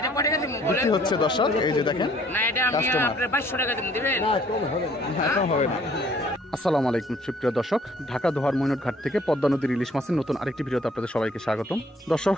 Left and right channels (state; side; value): normal; both; correlation 0.59